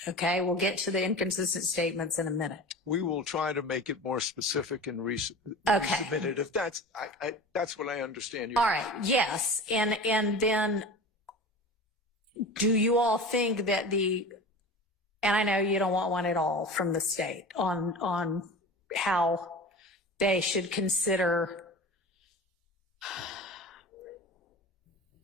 Okay. We'll get to the inconsistent statements in a minute. We will try to make it more specific and resubmit it. If that's what I understand. All right. Yes. And then do you all think that and I know you don't want one at all from the state on how they should consider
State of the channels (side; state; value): both; normal; correlation 0.34